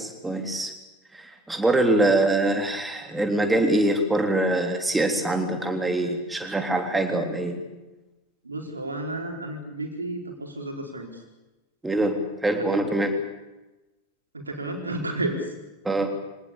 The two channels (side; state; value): both; normal; correlation 0.53